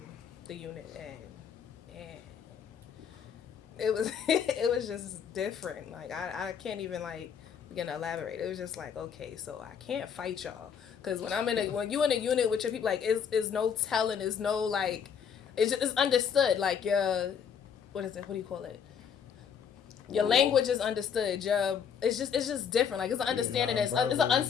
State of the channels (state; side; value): quieter; right; 7.5 dB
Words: the unit, and it was it was just different. Like I can't even like begin to elaborate. It was just like, okay, so I can't fight y'all, because when you in a unit with your people, like is no telling, is no like, it's understood. Like what is it? What do you call it? Your language is understood. It's just different. Like it's an understanding. It's an